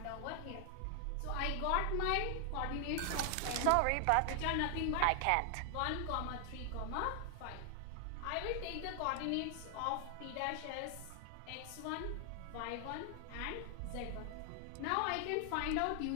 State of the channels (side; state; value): both; different; correlation 0.00